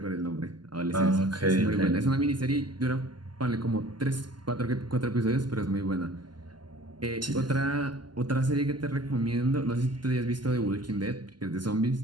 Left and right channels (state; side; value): late; left; 0.71 ms